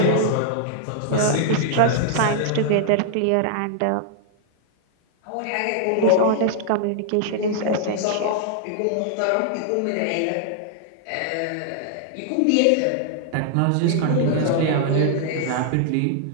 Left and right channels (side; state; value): both; different; correlation -0.01